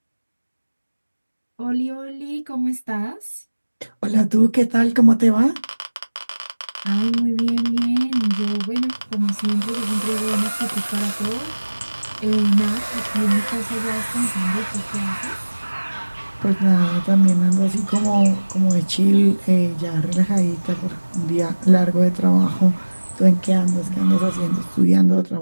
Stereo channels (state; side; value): inverted; both; correlation -1.00